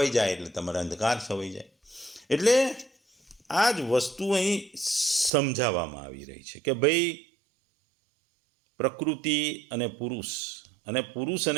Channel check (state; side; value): drops out; left; at 5.3 s